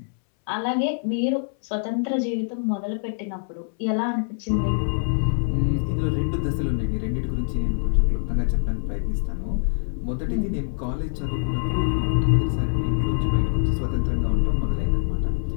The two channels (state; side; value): silent; right; 62 dB below the other